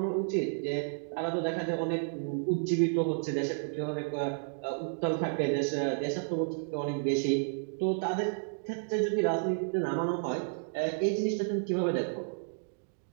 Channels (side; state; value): left; silent; digital silence